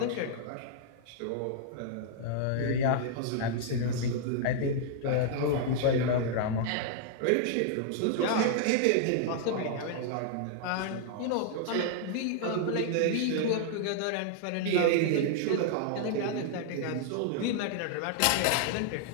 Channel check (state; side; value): different; both; correlation -0.01